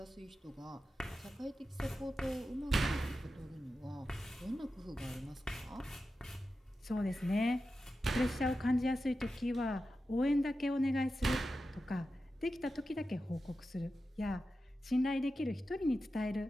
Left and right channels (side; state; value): both; normal; correlation 0.91